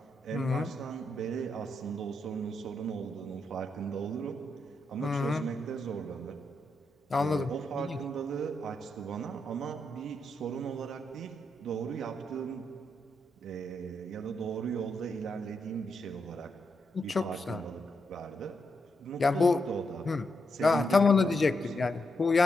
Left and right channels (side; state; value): both; normal; correlation 0.82